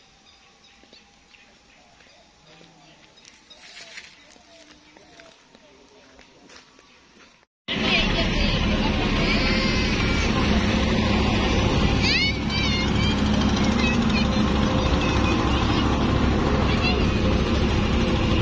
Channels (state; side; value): identical; both; correlation 1.00